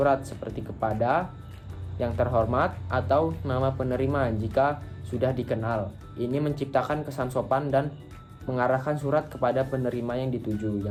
seperti kepada, yang terhormat, atau nama penerima jika sudah dikenal. Ini menciptakan kesan sopan dan mengarahkan surat kepada penerima yang dituju.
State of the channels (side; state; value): both; identical; correlation 1.00